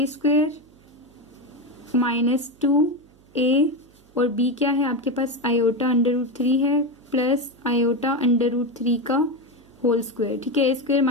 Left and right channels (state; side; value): noise; right; hum, 29 dB below the sound